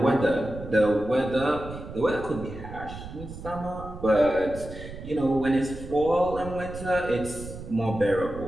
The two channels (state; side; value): noise; right; rumble, 12 dB below the sound